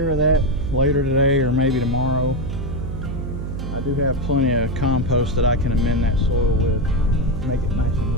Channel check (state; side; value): noise; right; hum, 5 dB below the sound